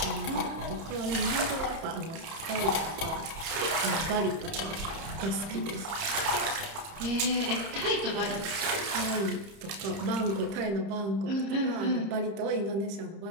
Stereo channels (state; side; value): late; left; 30 ms